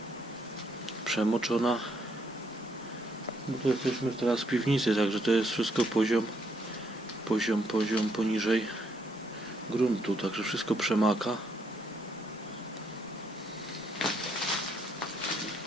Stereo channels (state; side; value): normal; both; correlation 0.73